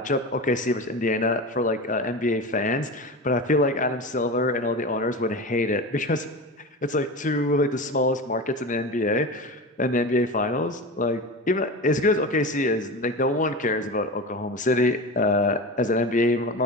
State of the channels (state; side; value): normal; both; correlation 0.27